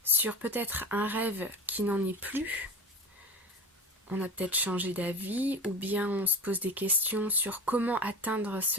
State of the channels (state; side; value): normal; both; correlation 0.32